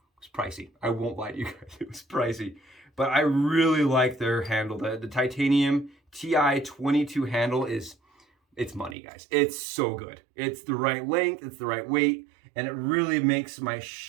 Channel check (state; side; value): drops out; left; at 9.0 s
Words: pricey. I won't lie to you guys. It was pricey. But I really like their handle. The titanium TI-22 handle is, it's money, guys. It's so good. It's the right length, it's the right weight, and it really makes my